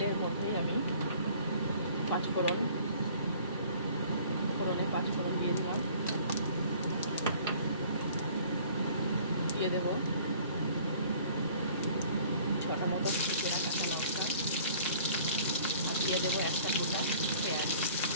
মধ্যেই আমি পাঁচফোড়নে পাঁচফোড়ন দিয়ে দিলাম। দিয়ে দেব 6টা মতো চেরা কাঁচা লঙ্কা, আর দিয়ে দেবো একটা গোটা পেঁয়াজ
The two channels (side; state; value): both; inverted; correlation -0.52